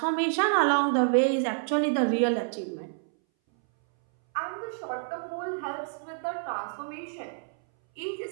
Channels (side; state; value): left; silent; 59 dB below the other